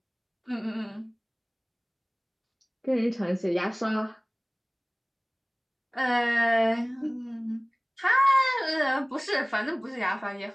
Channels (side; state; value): both; identical; correlation 1.00